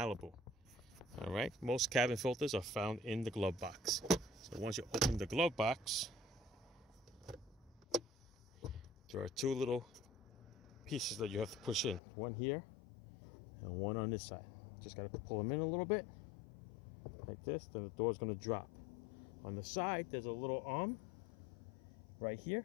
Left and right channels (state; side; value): drops out; right; at 12.0 s